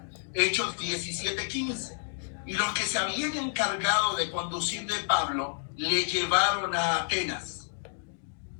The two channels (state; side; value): silent; right; digital silence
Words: Hechos 17:15. Y los que se habían encargado de conducir de Pablo le llevaron a Atenas.